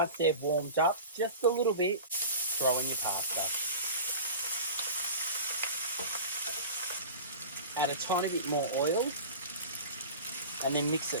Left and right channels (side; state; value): both; inverted; correlation -0.34